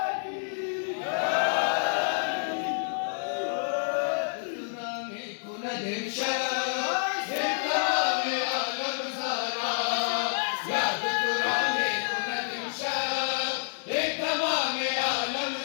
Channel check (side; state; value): right; silent; 59 dB below the other